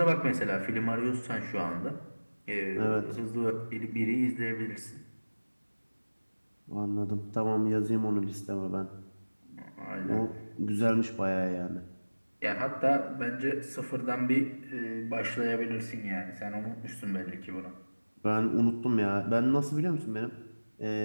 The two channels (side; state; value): both; inverted; correlation -1.00